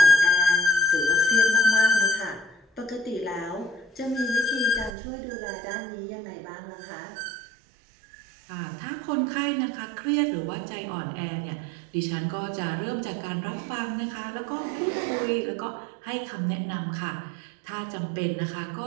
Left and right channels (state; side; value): drops out; left; at 5.0 s